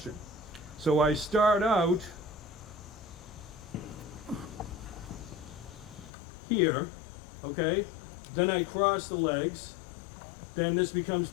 So I start out here, okay? Then I cross the legs. Then this becomes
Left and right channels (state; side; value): drops out; right; at 6.1 s